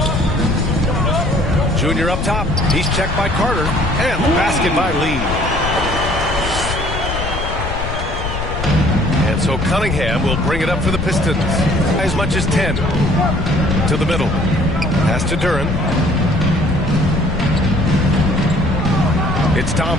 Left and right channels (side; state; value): left; noise; rumble, 5 dB below the sound